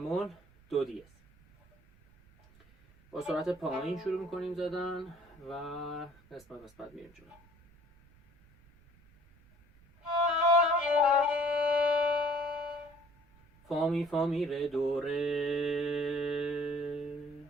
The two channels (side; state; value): right; noise; rumble, 28 dB below the sound